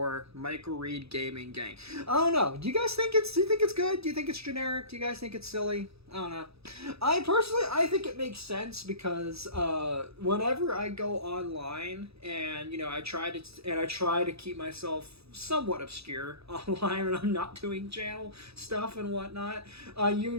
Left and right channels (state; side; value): late; left; 0.78 ms